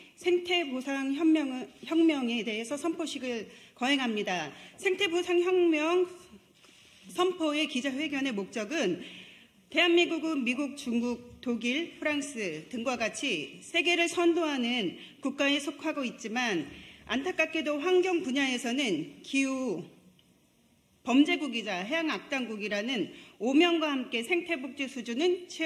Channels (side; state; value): both; identical; correlation 1.00